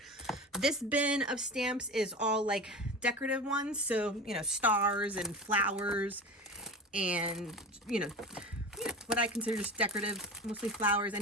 This bin of stamps is all like decorative ones. So, you know, stars and flowers and, you know, what I consider just decorative, mostly flowers,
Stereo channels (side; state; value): both; normal; correlation 0.29